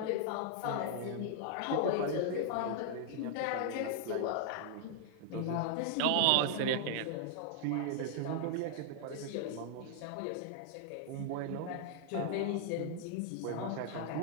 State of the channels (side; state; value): both; different; correlation 0.00